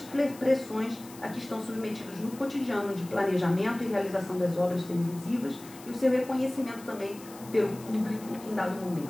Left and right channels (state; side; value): noise; left; hiss, 19 dB below the sound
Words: pressões a que estão submetidos no cotidiano de planejamento e realização das obras televisivas e o seu reconhecimento também pelo público em dado